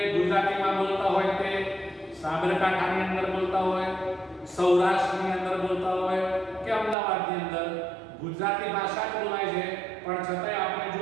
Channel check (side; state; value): left; drops out; at 7.0 s